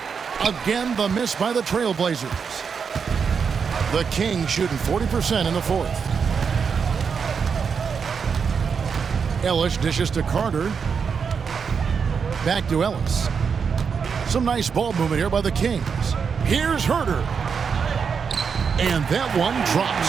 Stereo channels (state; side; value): quieter; left; 6.2 dB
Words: Again, the miss by the TrailBlazers. The Kings shooting 40% in the fourth. Ellis dishes to Carter. Back to Ellis. Some nice ball movement here by the Kings. Here's Herter. And that one